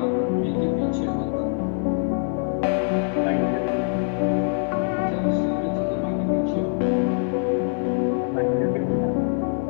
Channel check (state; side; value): silent; right; digital silence